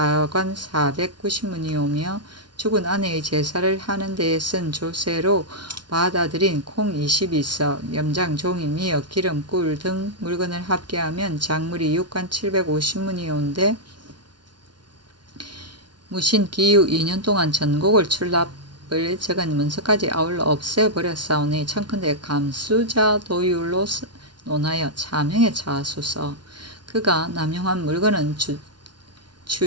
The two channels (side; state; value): left; late; 0.70 ms